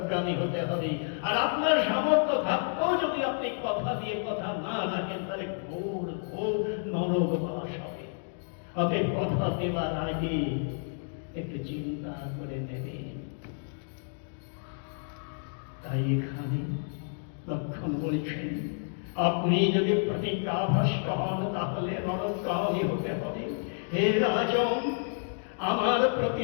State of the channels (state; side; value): silent; right; digital silence